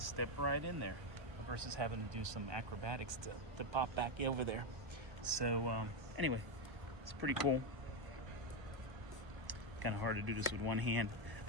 right in there versus having to do some acrobatics to pop back over there. So anyway, it's pretty cool. Kind of hard to do this with one hand.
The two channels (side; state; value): left; late; 1.0 ms